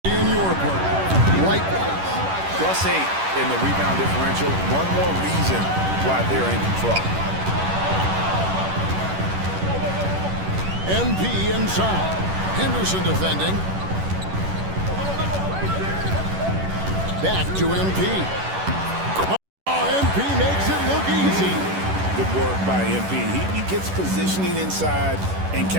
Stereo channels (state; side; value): late; left; 11 ms